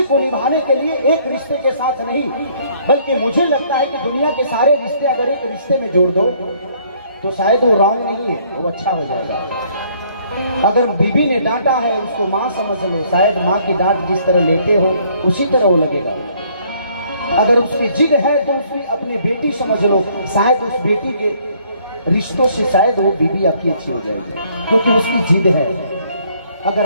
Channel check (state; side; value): inverted; both; correlation -0.63